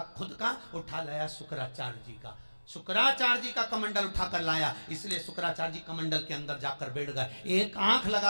खुद का, उठा लाया शुक्राचार्य जी का, शुक्राचार्य जी का कमंडल उठाकर लाया, इसलिए शुक्राचार्य जी कमंडल के अंदर जाकर बैठ गए, एक आंख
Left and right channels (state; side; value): inverted; both; correlation -1.00